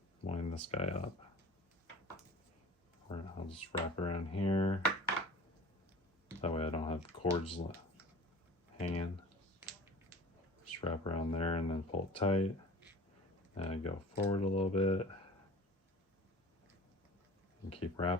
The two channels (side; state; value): both; normal; correlation 0.41